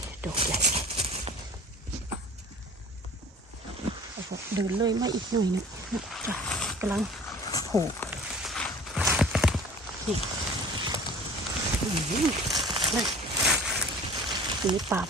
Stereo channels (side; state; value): both; normal; correlation 0.42